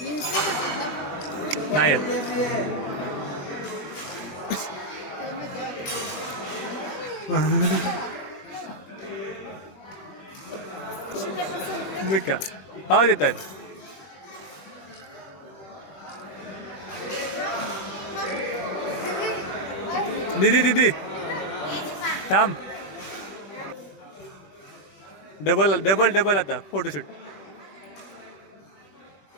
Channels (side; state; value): right; late; 21 ms